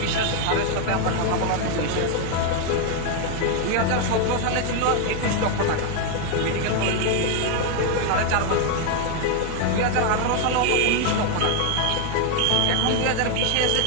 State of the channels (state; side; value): different; both; correlation 0.01